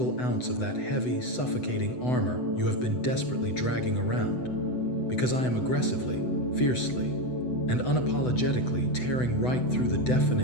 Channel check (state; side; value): late; right; 8.0 ms